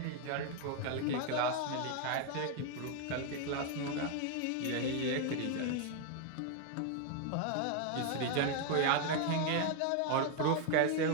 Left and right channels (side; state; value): both; different; correlation 0.01